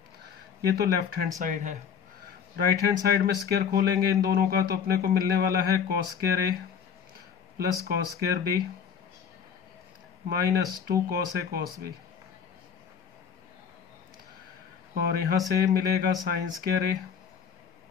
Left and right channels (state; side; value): quieter; right; 7.3 dB